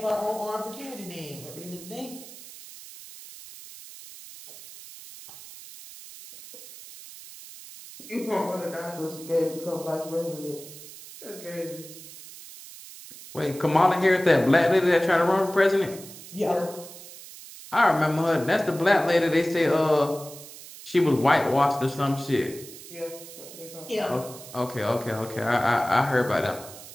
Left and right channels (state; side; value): noise; right; hiss, 16 dB below the sound